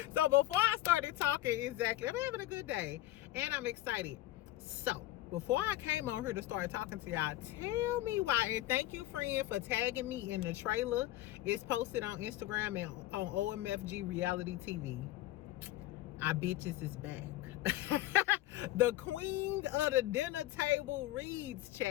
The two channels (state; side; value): quieter; right; 15.7 dB